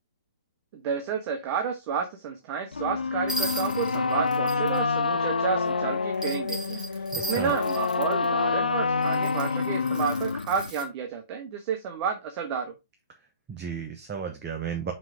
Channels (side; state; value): both; inverted; correlation -0.47